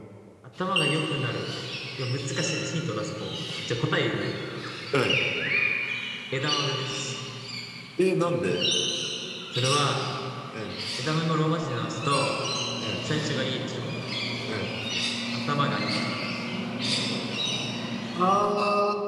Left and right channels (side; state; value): both; identical; correlation 1.00